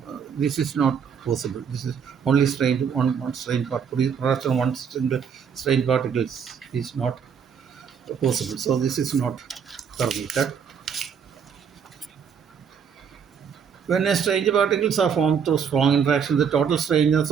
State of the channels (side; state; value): left; quieter; 7.1 dB